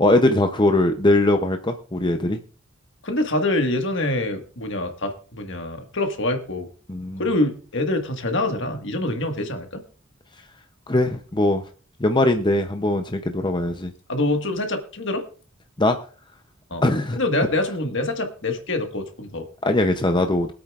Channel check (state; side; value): normal; both; correlation 0.48